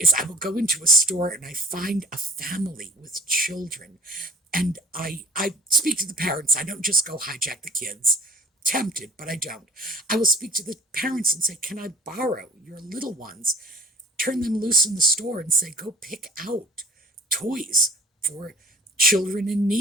I will go into a store and I find a family with children, and I speak to the parents. I don't just go hijack the kids. Tempted, but I don't. I will speak to the parents and say, can I borrow your little ones? Turn them loose in the store and say, go pick out toys for children in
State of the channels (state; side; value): normal; both; correlation 0.45